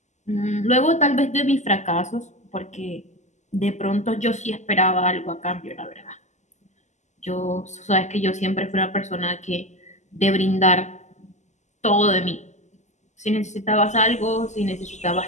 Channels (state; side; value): late; right; 0.34 ms